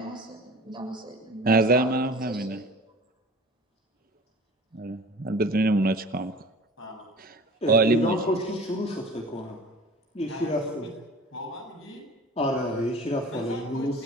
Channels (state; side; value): normal; both; correlation 0.41